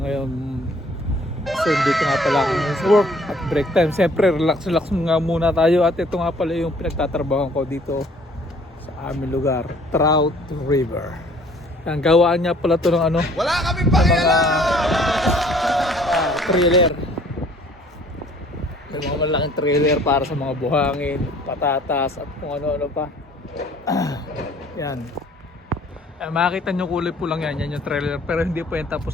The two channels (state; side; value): normal; both; correlation 0.56